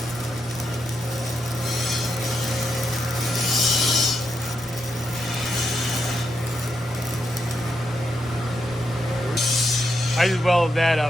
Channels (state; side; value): normal; both; correlation 0.82